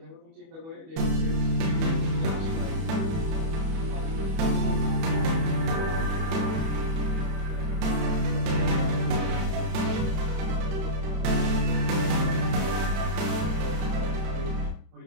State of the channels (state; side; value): late; left; 31 ms